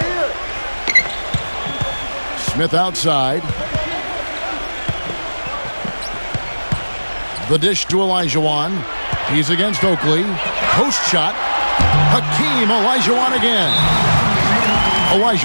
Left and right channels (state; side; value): inverted; both; correlation -1.00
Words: Smith outside. The dish to Olajuwon. He's against Oakley. Post shot. Hakeem Olajuwon again.